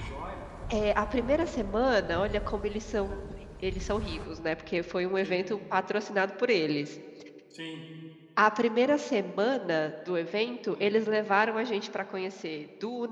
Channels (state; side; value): identical; both; correlation 1.00